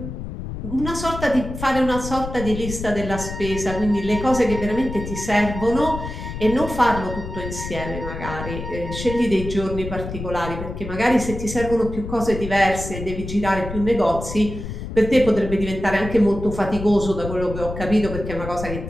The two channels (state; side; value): noise; left; rumble, 8 dB below the sound